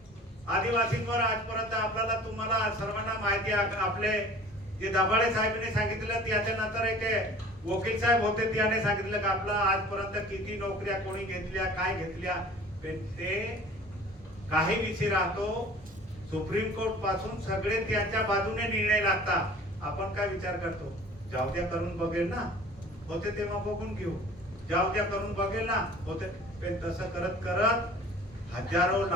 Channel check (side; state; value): both; normal; correlation 0.46